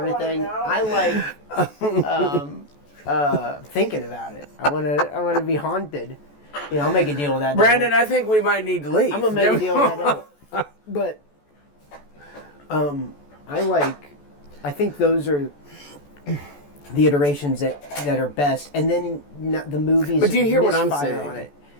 I like thinking about it. I want to be haunted. I'll make a deal with that. Brandon, devil. I think we might need to leave. I'm gonna make a deal with that. Devil. But I think those are the iterations that are best, and then the movies. But do you hear what I'm misfire saying? On it.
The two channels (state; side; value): late; right; 14 ms